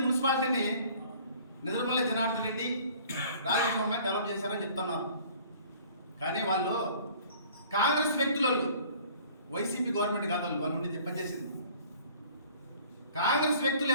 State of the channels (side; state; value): both; inverted; correlation -0.52